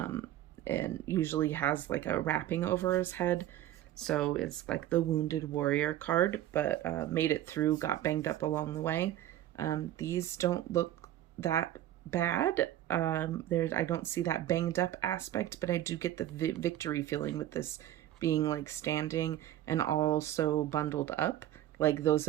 and usually has like a wrapping over his head. So it's like the wounded warrior card, but made it through, got banged up along the way. These don't look that bad. I don't see that banged up aspect, but I do get the victory feeling with this being like standing and also bundled up. Like those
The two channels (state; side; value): quieter; left; 12.9 dB